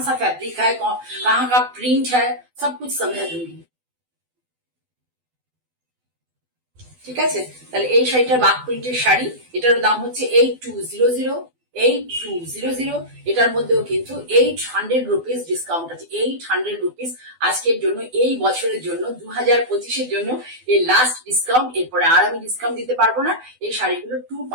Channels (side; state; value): left; late; 12 ms